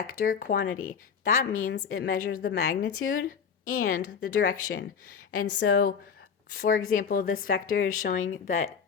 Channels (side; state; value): right; quieter; 6.6 dB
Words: quantity. That means it measures the magnitude and the direction. And so, for example, this vector is showing that